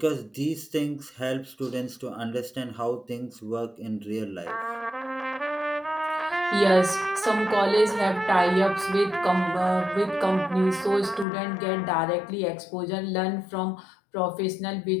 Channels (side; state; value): right; drops out; at 11.2 s